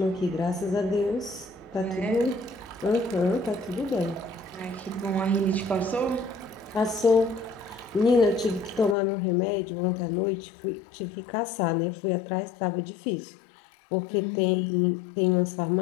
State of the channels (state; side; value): drops out; right; at 9.0 s